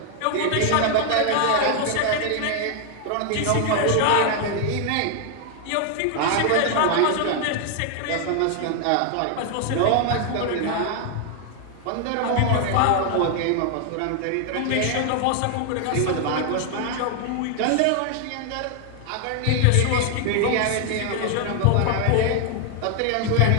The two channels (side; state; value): both; different; correlation 0.00